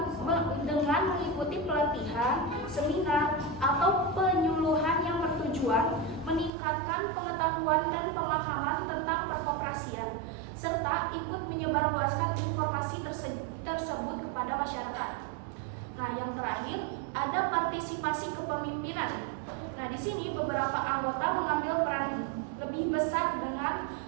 mengikuti pelatihan, seminar, atau penyuluhan yang bertujuan meningkatkan pengetahuan dan pemahaman tentang perkoperasian, serta ikut menyebarluaskan informasi tersebut kepada masyarakat. Nah, yang terakhir ada partisipasi kepemimpinan. Nah, di sini beberapa anggota mengambil peran lebih besar dengan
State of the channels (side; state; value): left; drops out; at 6.5 s